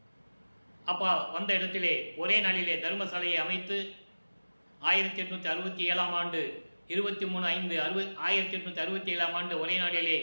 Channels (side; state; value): both; inverted; correlation -1.00